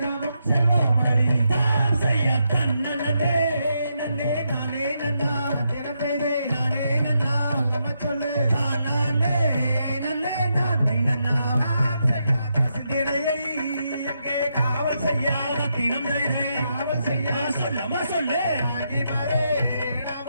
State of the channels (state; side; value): inverted; both; correlation -0.82